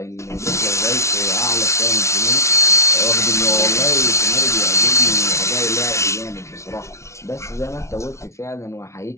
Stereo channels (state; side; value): late; right; 0.13 ms